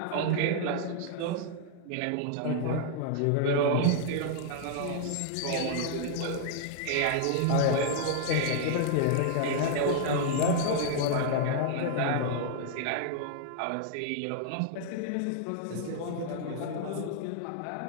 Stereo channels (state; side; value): different; both; correlation 0.00